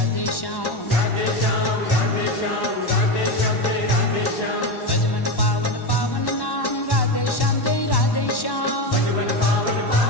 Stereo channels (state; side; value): late; right; 1.1 ms